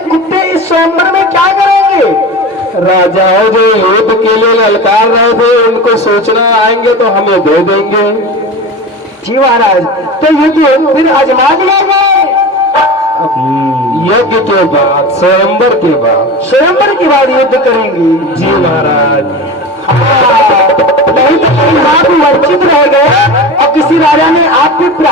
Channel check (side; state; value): both; normal; correlation 0.29